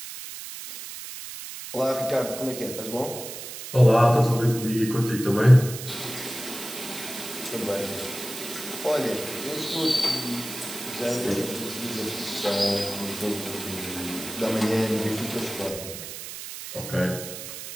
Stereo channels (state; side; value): noise; right; hiss, 10 dB below the sound